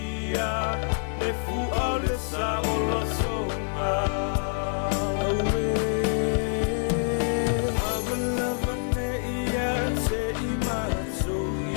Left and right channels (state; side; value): silent; right; digital silence